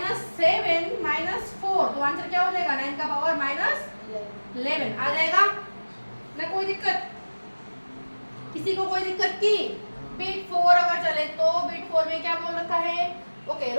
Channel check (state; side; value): inverted; both; correlation -1.00